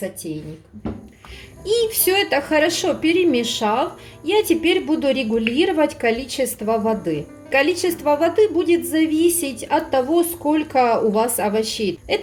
И все это хорошо перемешав, я теперь буду регулировать количество воды. Количество воды будет зависеть от того, сколько у вас овощей.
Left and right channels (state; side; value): identical; both; correlation 1.00